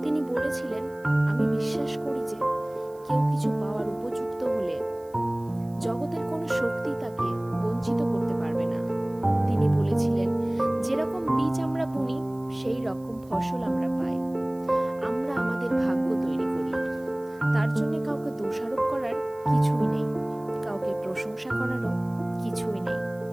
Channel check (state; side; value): noise; right; hiss, 28 dB below the sound